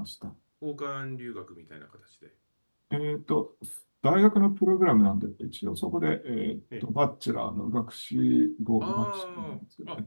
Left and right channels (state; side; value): inverted; both; correlation -1.00